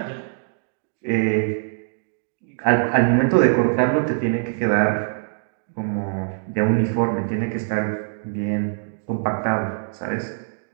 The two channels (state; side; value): silent; left; digital silence